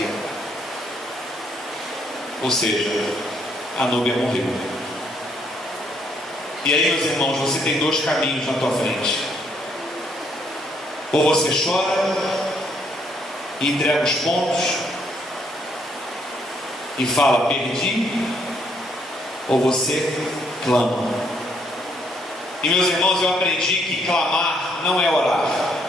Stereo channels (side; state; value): both; normal; correlation 0.70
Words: Ou seja, a Núbia morreu. E aí, meus irmãos, você tem dois caminhos na tua frente. Ou você chora e entrega os pontos e fala, perdi, ou você clama. E meus irmãos, eu aprendi que clamar não é orar.